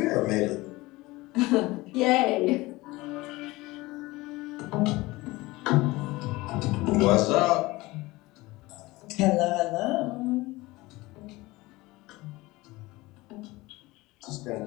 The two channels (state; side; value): quieter; right; 20.7 dB